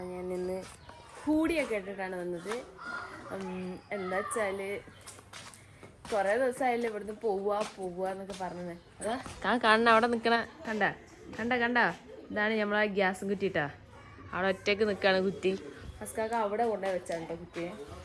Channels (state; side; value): identical; both; correlation 1.00